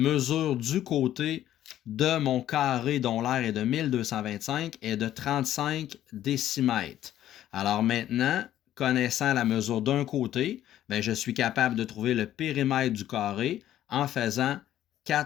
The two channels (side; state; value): right; quieter; 12.3 dB